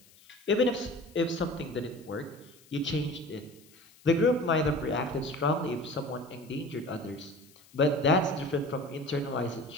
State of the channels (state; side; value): noise; left; hiss, 26 dB below the sound